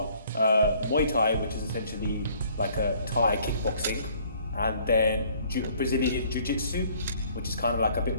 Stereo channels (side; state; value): both; inverted; correlation -0.59